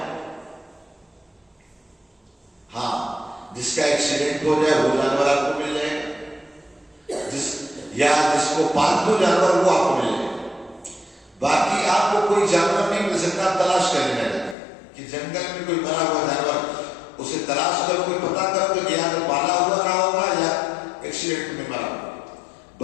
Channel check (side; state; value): right; drops out; at 14.6 s